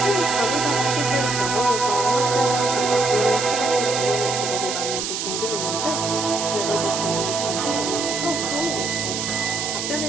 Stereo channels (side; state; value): right; noise; hiss, 3 dB below the sound